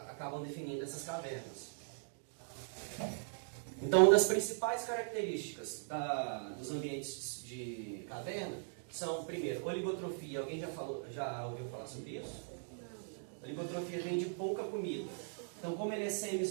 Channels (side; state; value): left; silent; digital silence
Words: definindo essas cavernas. Então, uma das principais características dos ambientes de caverna são, primeiro, oligotrofia. Alguém já ouviu falar sobre isso? Oligotrofia vem de pouca comida. Então, como ele é